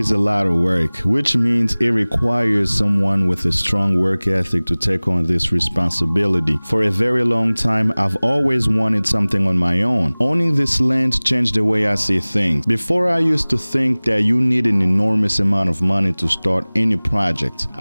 a lot of work, which means it requires someone with a strong work ethic to take on this responsibility. For a very long time, I've always wanted something on my own. Owning this land changed the way I see things. Before, I used to think that you need an enormous amount of money to start any project.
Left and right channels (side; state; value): both; inverted; correlation -1.00